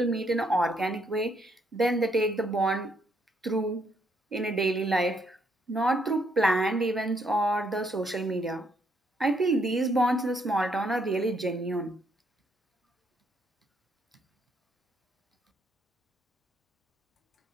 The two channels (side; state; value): both; normal; correlation 0.72